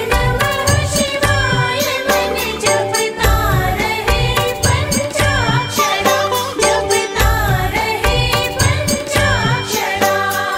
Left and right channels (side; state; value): both; identical; correlation 1.00